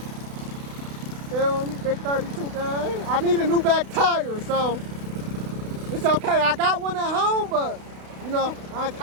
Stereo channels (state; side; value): late; left; 32 ms